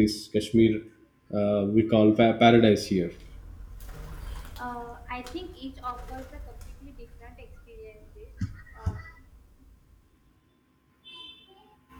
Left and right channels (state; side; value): identical; both; correlation 1.00